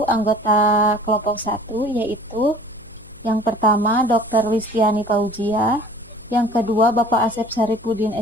anggota kelompok 1, yaitu yang pertama Dr. Listiani Fauzia, yang kedua Bapak Asep Saripudin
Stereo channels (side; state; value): left; noise; hum, 25 dB below the sound